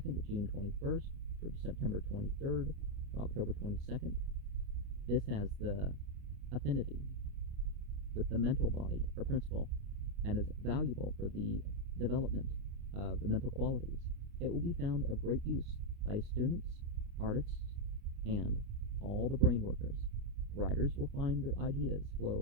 to June 21st, from September 23rd to October 22nd. This has the affinity with the mental body or principle and is valuable for the development of the mental qualities. It will be found of great use by students, artists, and all the brain workers. Writers will find their ideas flow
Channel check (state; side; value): late; left; 29 ms